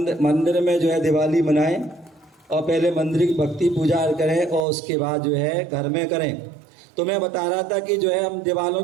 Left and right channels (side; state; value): left; drops out; at 4.7 s